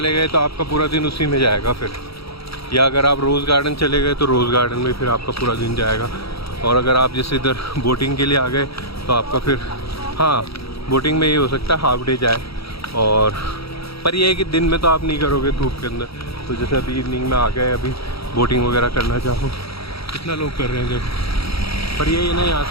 गए तो आपका पूरा दिन उसी में जाएगा फिर, या अगर आप रोज़ गार्डन चले गए तो रोज़ गार्डन में फिर आपका पूरा दिन जाएगा। और अगर आप जैसे इधर बोटिंग के लिए आ गए तो आपका फिर, हाँ बोटिंग में ये हो सकता है हाफ डे जाए, और पर ये है कि दिन में तो आप नहीं करोगे धूप के अंदर, तो जैसे अभी इवनिंग में आ गए, अभी बोटिंग वगैरह करना चाहो, कितना लोग कर रहे हैं जब, पर ये ना यहाँ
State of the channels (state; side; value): late; right; 0.77 ms